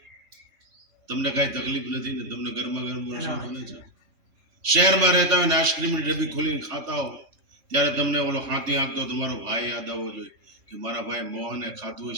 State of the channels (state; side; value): late; left; 3.3 ms